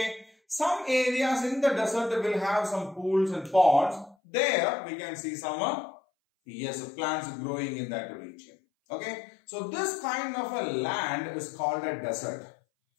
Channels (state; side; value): drops out; right; at 4.2 s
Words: Some areas in the desert will have some pools and ponds. There we can see some plants growing in that region. Okay. So this kind of a land is called a desert.